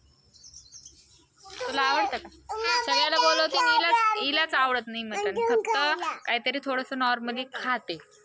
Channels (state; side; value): identical; both; correlation 1.00